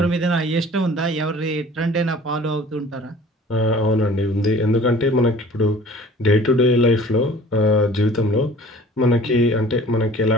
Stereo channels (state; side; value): normal; both; correlation 0.47